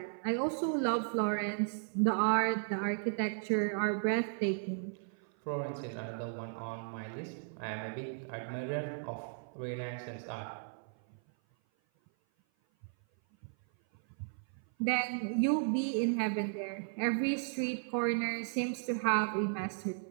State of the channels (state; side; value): silent; left; 54 dB below the other